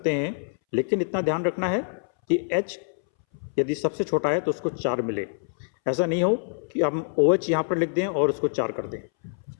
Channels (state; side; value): silent; right; 61 dB below the other